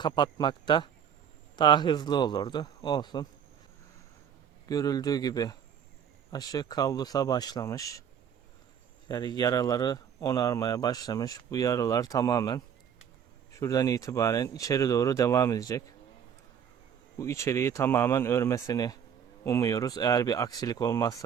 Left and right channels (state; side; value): quieter; left; 8.2 dB